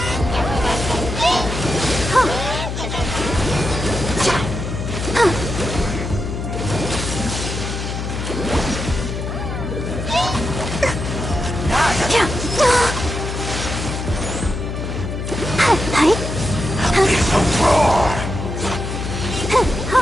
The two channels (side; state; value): left; noise; hum, 5 dB below the sound